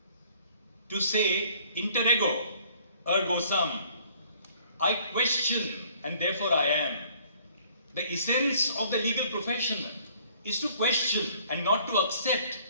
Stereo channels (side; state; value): both; inverted; correlation -0.58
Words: to say, interego ergo sum, I question and therefore I am. The essence of the legal profession is to question and not to accept.